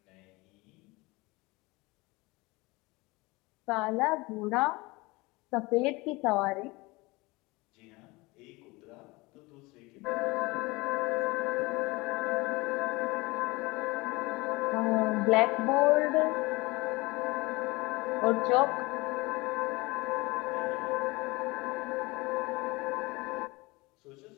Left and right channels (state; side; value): quieter; right; 23.5 dB